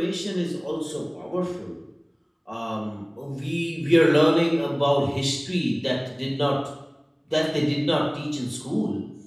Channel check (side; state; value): both; identical; correlation 1.00